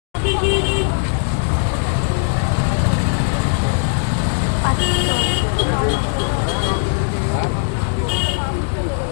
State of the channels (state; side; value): silent; right; digital silence